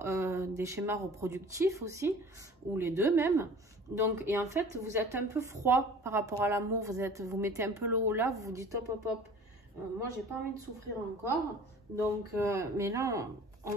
des schémas reproductifs aussi, ou les deux même. Donc, et en fait, vous êtes un peu froid par rapport à l'amour, vous mettez un peu le haut là, vous vous dites hop hop hop, moi j'ai pas envie de souffrir encore, donc, mais là on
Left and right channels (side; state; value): both; normal; correlation 0.45